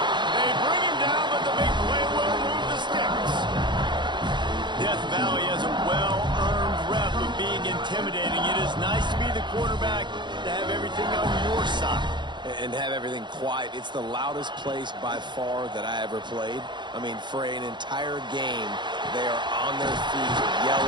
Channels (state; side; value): late; left; 0.22 ms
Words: They bring him down, but the big play will move the sticks. Death Valley has a well-earned rep of being intimidating. It is nice to be the quarterback, to have everything on your side. And have everything quiet. It's the loudest place by far that I ever played. I mean, for an entire game, they are on their feet,